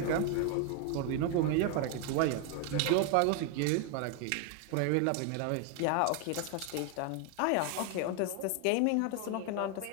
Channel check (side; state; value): both; different; correlation 0.01